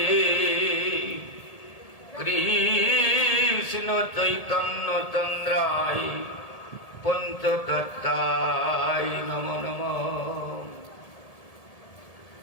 কৃষ্ণ চৈতন্য চন্দ্রায় পঞ্চতত্ত্বায় নমো নমঃ।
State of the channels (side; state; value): right; late; 1.7 ms